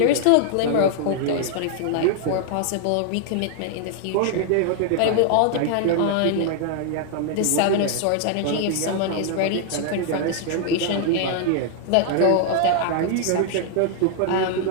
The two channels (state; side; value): different; both; correlation 0.00